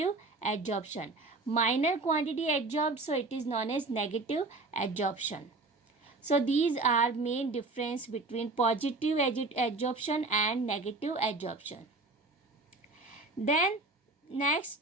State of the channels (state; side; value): quieter; left; 3.3 dB